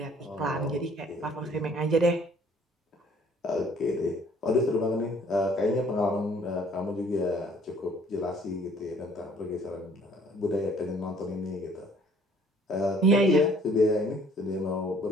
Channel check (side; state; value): both; normal; correlation 0.58